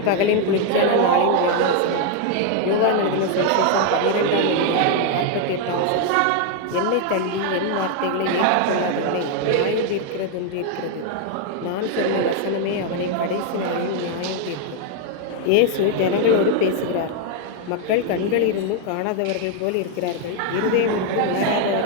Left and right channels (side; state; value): both; different; correlation 0.00